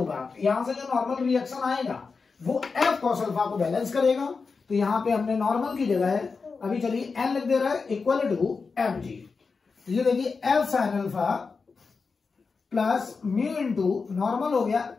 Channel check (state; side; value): quieter; right; 4.7 dB